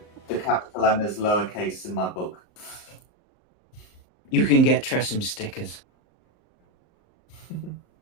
the capital M is lowercase in my book. You can get Tressim stickers.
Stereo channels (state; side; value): late; right; 38 ms